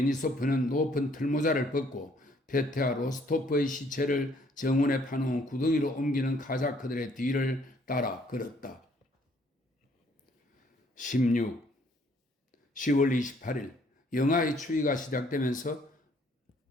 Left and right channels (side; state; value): both; normal; correlation 0.64